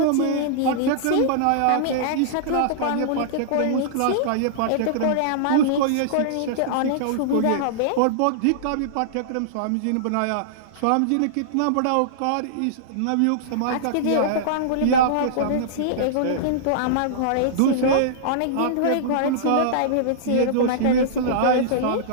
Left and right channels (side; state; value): both; different; correlation -0.02